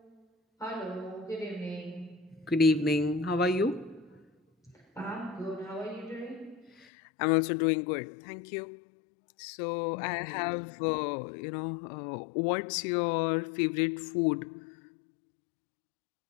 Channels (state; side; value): drops out; right; at 6.9 s